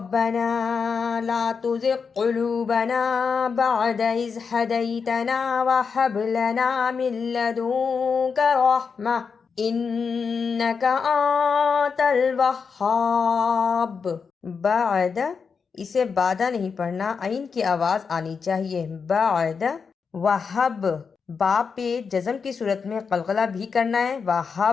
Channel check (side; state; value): right; quieter; 5.7 dB